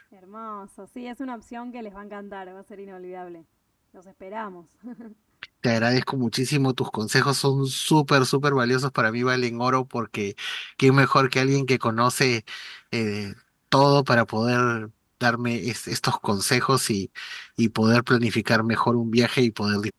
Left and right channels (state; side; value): identical; both; correlation 1.00